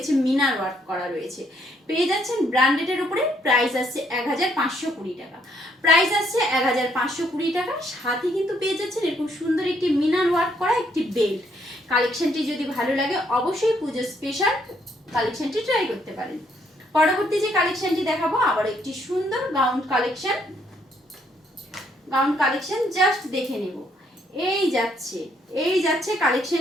মিনার ওয়ার্ক করা রয়েছে, পেয়ে যাচ্ছেন ব্র্যান্ডেডের উপরে। প্রাইস আসছে 1520 টাকা। প্রাইস আসছে 1520 টাকা। সাথে কিন্তু পেয়ে যাচ্ছেন এরকম সুন্দর একটি মিনার ওয়ার্ক করা একটি বেল্ট। কালেকশনটি যদি ভালো লাগে অবশ্যই পুজো স্পেশাল কালেকশনটি ট্রাই করতে পারেন। পরবর্তী যে কালেকশনটি দেখাবো আবার একটি সুন্দর gown collection. Gown collection just দেখে নেব। এই যাচ্ছে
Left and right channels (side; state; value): both; normal; correlation 0.70